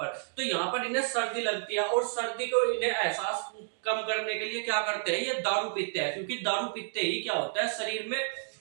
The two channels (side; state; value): left; silent; digital silence